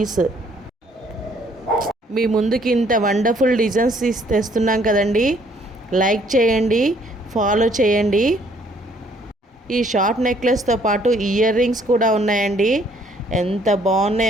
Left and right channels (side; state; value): both; normal; correlation 0.63